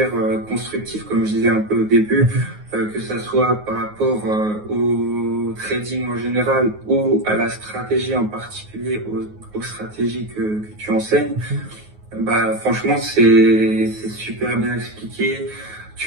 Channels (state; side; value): late; left; 9.5 ms